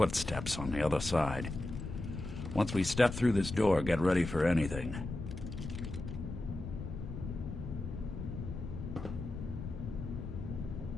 on the other side. Once we step through this door, get ready for anything.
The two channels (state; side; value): noise; left; rumble, 7 dB below the sound